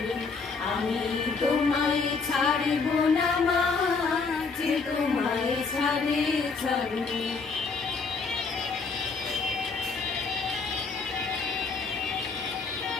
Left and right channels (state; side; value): quieter; right; 4.6 dB